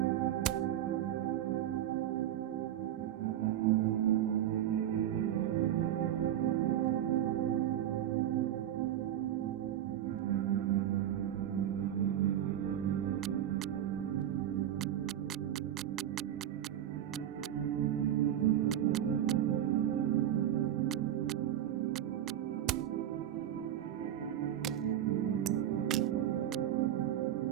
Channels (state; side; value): quieter; left; 11.2 dB